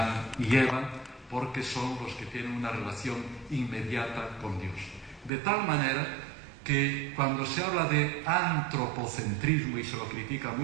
y Eva, porque son los que tienen una relación inmediata con Dios. De tal manera que cuando se habla de antropocentrismo y se lo critica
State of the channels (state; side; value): drops out; left; at 5.3 s